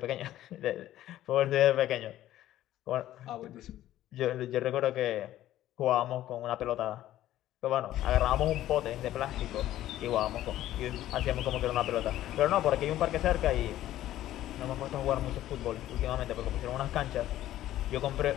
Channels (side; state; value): right; quieter; 13.6 dB